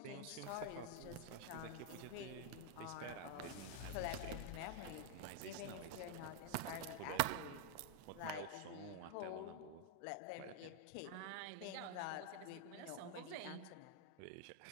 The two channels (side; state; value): both; different; correlation 0.00